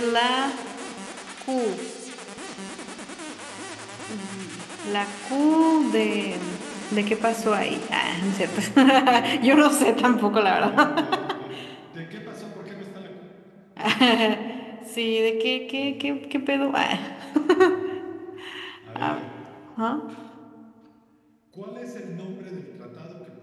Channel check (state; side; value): identical; both; correlation 1.00